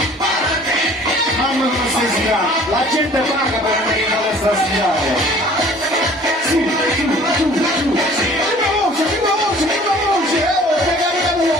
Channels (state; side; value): normal; both; correlation 0.51